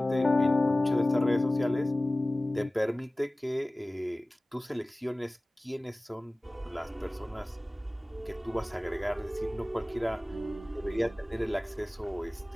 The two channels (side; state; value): both; normal; correlation 0.98